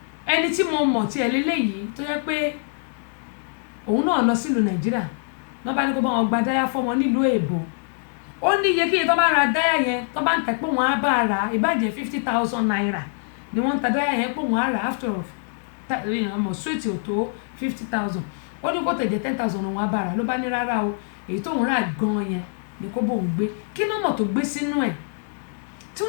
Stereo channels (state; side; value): silent; right; 63 dB below the other